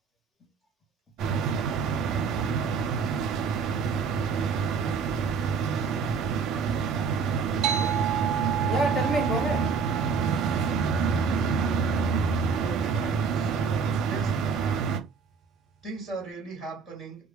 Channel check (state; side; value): quieter; left; 5.5 dB